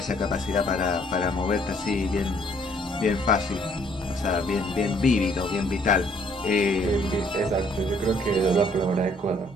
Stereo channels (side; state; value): both; normal; correlation 0.64